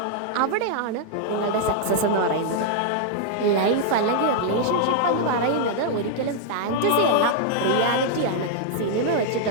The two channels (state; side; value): different; both; correlation -0.01